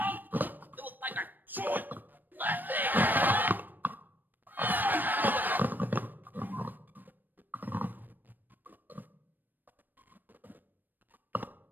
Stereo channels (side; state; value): left; late; 0.090 ms